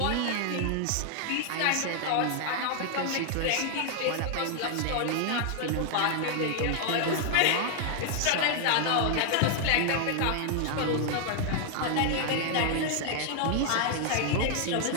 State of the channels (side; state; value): both; different; correlation 0.00